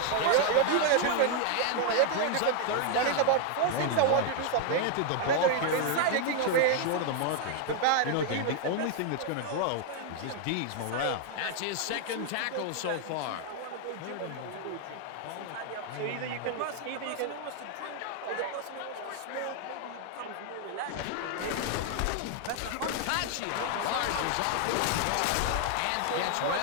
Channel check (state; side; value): different; both; correlation 0.00